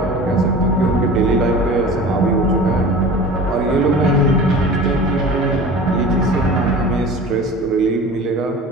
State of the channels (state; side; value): normal; both; correlation 0.38